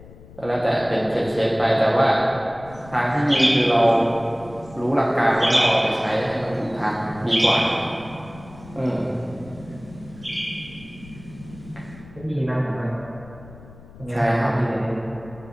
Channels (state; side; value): noise; left; rumble, 20 dB below the sound